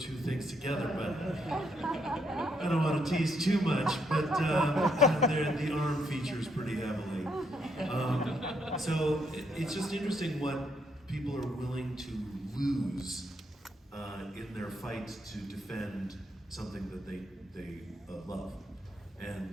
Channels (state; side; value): normal; both; correlation 0.75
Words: things together, but I don't want to tease too much, but the arm features pretty heavily. So it's just interesting what people are willing to lose in their fight to defend something that they love.